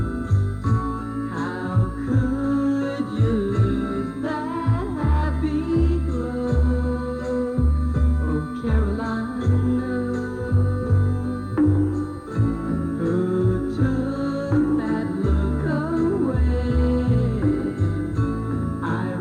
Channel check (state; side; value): identical; both; correlation 1.00